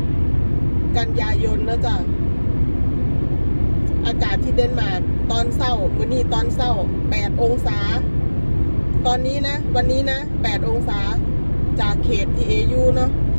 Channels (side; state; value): both; inverted; correlation -1.00